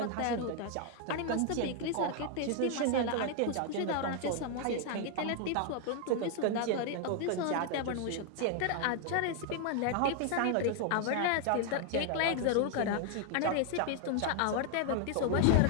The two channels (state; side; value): different; both; correlation 0.00